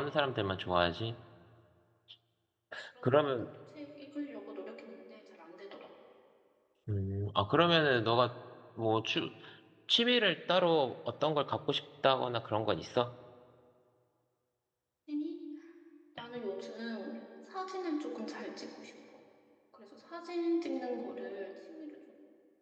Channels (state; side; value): identical; both; correlation 1.00